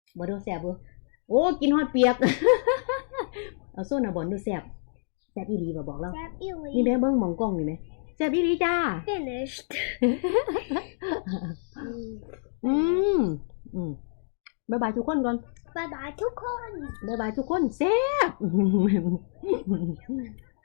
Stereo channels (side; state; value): right; silent; digital silence